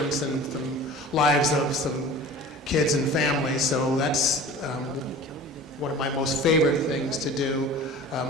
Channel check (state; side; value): normal; both; correlation 0.40